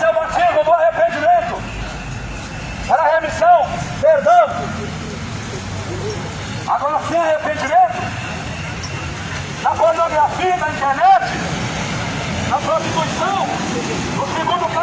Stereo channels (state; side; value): identical; both; correlation 1.00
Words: é o batismo do arrependimento, para remissão, perdão. Agora, sem arrependimento, na pornografia, na internet, na prostituição, no segundo